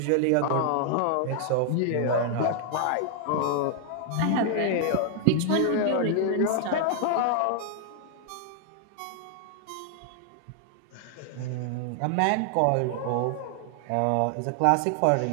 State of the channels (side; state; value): both; different; correlation 0.00